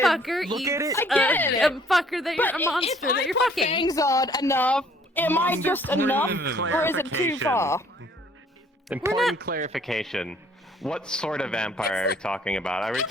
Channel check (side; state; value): both; normal; correlation 0.59